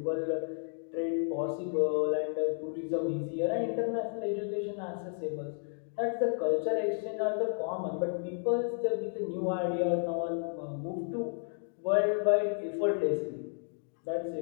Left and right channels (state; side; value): silent; right; digital silence